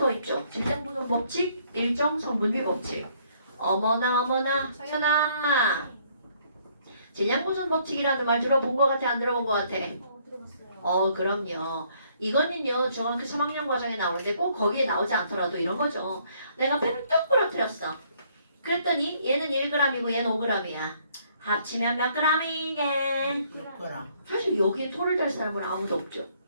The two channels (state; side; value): inverted; both; correlation -0.66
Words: 있죠. 질량 보존 법칙, 일정 성분비 법칙. 어머나 서연아. 질량 보존 법칙이라는 말 들어본 것 같아? 안 들어본 것 같아? 들어봤어요. 그럼요. 이거는요 중학교 3학년 과정에 나오는데 꼭 거기에 나오지 않더라도 이런 거죠. 내가 펜을 뚝 부러뜨렸어. 그랬더니 얘는 1g이고 얘는 5g이야. 합치면 몇 g이게? 사실 여기에 토를 댈 사람은 아무도 없죠.